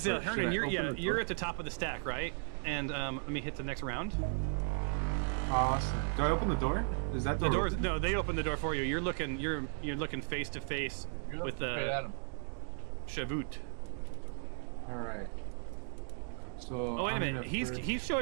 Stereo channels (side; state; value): left; silent; 54 dB below the other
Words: So Should Hernan, I you're open the you're door? at the top of the stack, right? And let me hit the next round. Awesome. Do I open the door? Is that The doors? No, they open the door for you. You're looking face to face You're with looking straight at the him. Shavut. All right. So. Oh wait a I'm minute, gonna he's first- he's